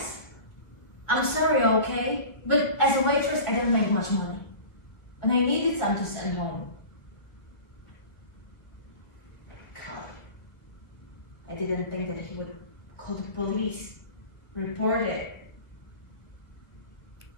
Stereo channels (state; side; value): late; right; 1.6 ms